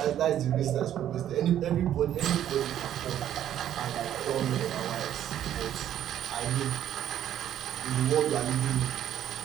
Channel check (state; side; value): quieter; left; 11.0 dB